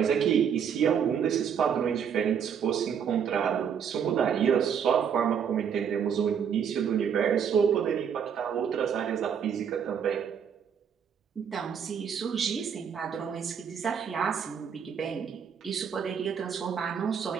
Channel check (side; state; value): left; quieter; 7.6 dB